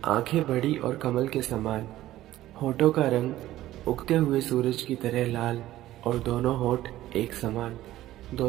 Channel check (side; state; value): left; quieter; 14.7 dB